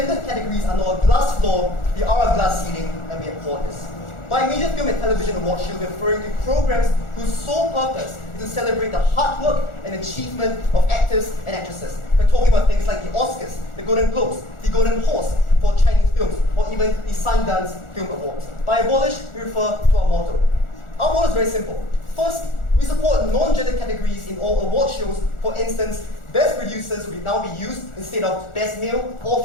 categories are not a glass floor, they are a glass ceiling, and we abhor this. By major film and television awards, she will be referring to programs whose sole purpose is to celebrate the hard work and achievement of actors and actresses. We're talking about things like the Oscars, the Golden Globes, the Golden Horse for Chinese films, or even the Sundance Film Awards. By abolish, we refer to our motto. Our motto is very simple. First, we support non-gender categories in all award shows. For instance, best producers will now be used instead of best male or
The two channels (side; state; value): right; late; 1.4 ms